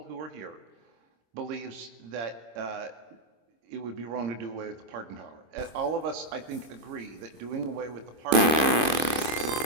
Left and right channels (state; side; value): late; left; 26 ms